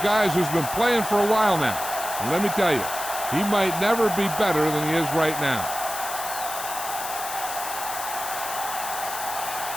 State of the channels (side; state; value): left; noise; hiss, 7 dB below the sound